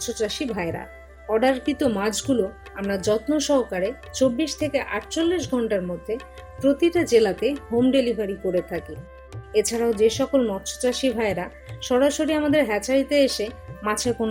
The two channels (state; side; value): identical; both; correlation 1.00